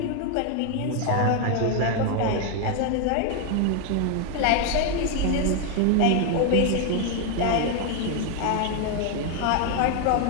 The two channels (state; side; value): different; both; correlation 0.01